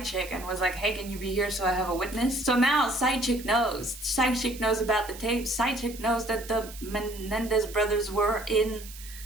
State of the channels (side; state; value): right; noise; hiss, 16 dB below the sound